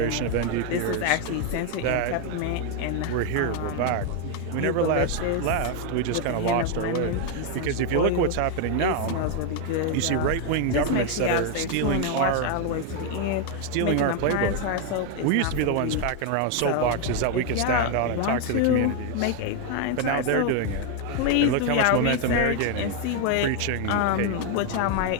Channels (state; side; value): different; both; correlation 0.01